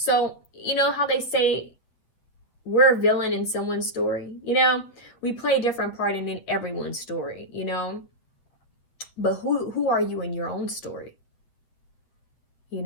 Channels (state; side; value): late; right; 8.4 ms